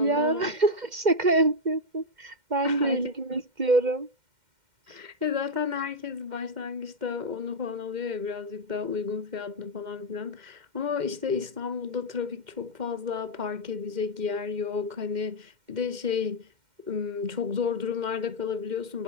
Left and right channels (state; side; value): late; left; 2.1 ms